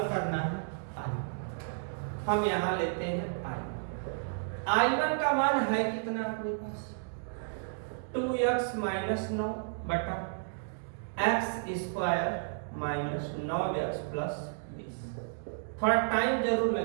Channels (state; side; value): silent; left; digital silence